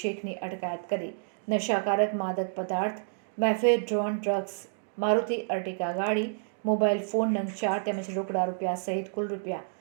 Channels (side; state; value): left; silent; digital silence